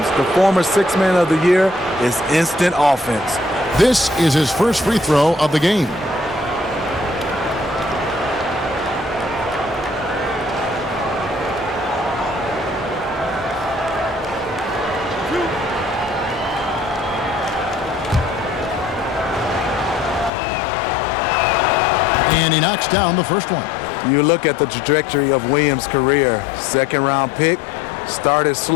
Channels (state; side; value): drops out; right; at 20.3 s